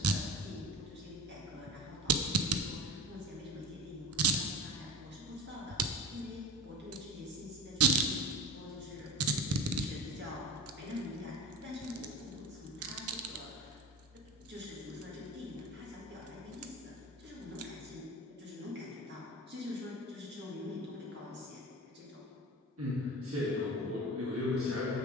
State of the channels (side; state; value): both; normal; correlation 0.31